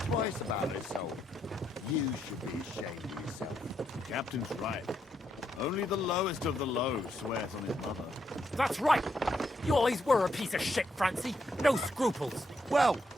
twice about her soul. You should be ashamed of yourself. The captain's right. Only the lowest of the low swears on his mother. That's right. You always were a piece of shit, Francie. No scruples. Well,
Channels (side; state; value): both; normal; correlation 0.78